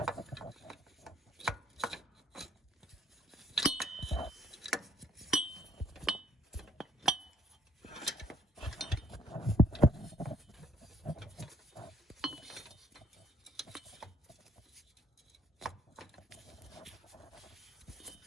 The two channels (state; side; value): normal; both; correlation 0.66